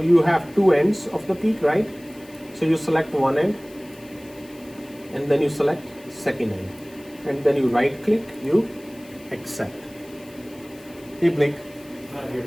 have two ends of the peak, right? So you select one end, and then you select second end, and then you right click, you accept. Hey Blake. Not here.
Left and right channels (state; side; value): noise; left; hiss, 24 dB below the sound